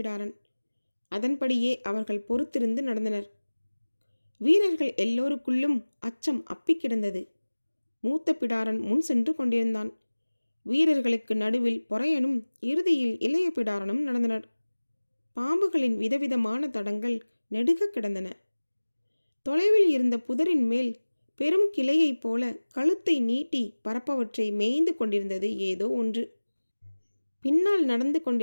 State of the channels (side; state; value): both; inverted; correlation -1.00